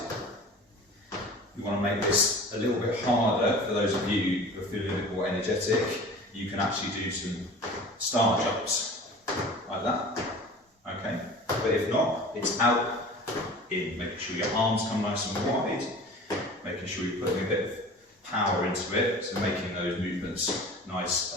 You want to make this a little bit harder for those of you who are feeling a bit more energetic. You can actually do some star jumps like that. Okay, but if not, it's out, in, making sure your arms come nice and wide, making sure you're putting a bit of power into it, so making those movements nice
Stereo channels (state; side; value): normal; both; correlation 0.40